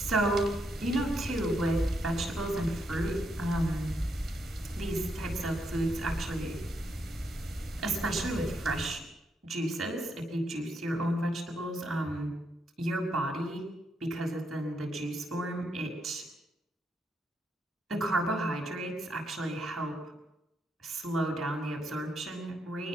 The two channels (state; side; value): normal; both; correlation 0.79